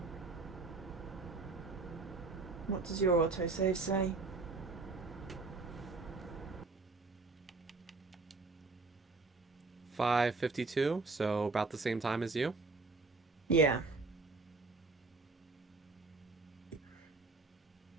What does your autosave say? $5:52, so about the same time as you. Yeah.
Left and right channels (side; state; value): left; quieter; 3.7 dB